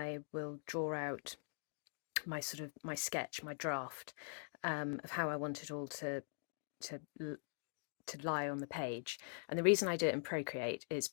will draw out my sketch, my draft, of how I want it all to lie on the page. And the reason I do it in Procreate is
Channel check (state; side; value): silent; right; digital silence